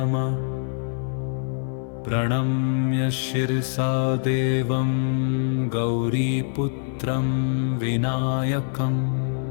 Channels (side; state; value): right; silent; 56 dB below the other